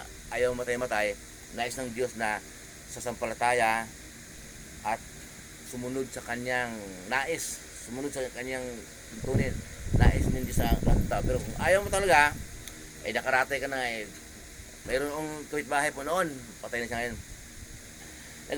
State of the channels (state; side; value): identical; both; correlation 1.00